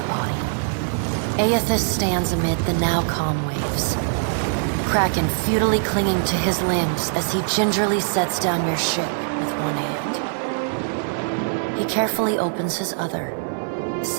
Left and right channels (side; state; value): left; silent; digital silence